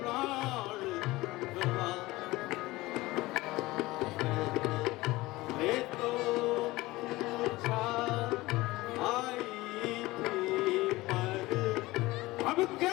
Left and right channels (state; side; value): quieter; right; 19.6 dB